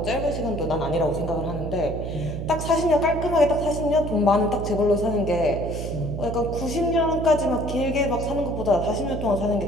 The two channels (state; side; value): noise; right; hum, 6 dB below the sound